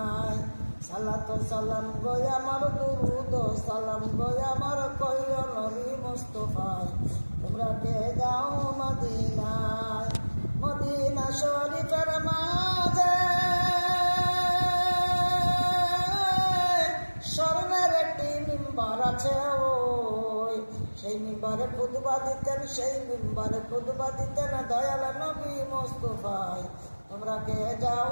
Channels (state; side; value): inverted; both; correlation -1.00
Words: সালাত সালাম গো আমার দুরুদ সালাম গো আমার কইও নবী মুস্তাফায় তোমরা কে যাও মদিনায় মদিনা শরীফের মাঝে স্বর্ণের একটি মিম্বার আছে ওই সেই মিম্বারে খুতবা দিতেন সেই মিম্বারে খুতবা দিতেন দয়াল নবী মুস্তাফায় তোমরা কে